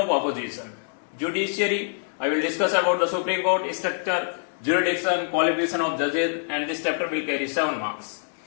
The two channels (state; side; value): silent; right; 60 dB below the other